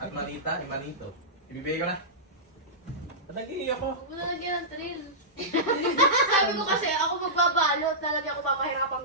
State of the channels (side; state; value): both; normal; correlation -0.15